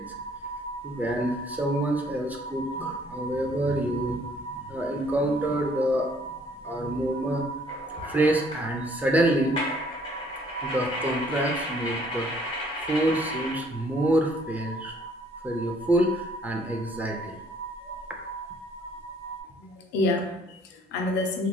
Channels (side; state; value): both; normal; correlation 0.61